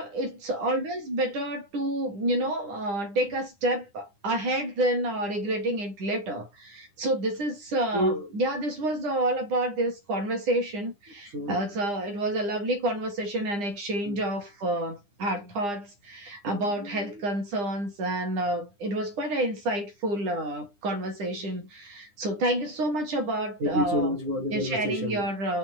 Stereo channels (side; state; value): left; late; 9.9 ms